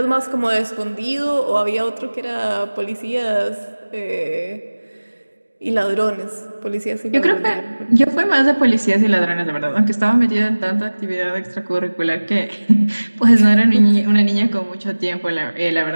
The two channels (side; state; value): both; inverted; correlation -1.00